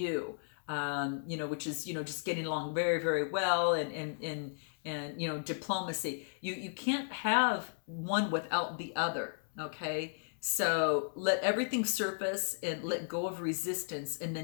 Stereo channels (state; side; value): silent; right; 55 dB below the other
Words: which is, just getting along very, very well, and diplomacy. You can't have one without the other, okay? So let everything surface and let go of resistance, and